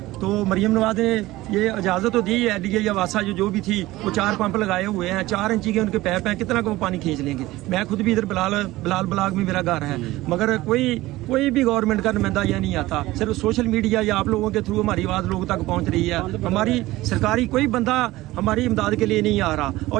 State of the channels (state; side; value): quieter; left; 18.0 dB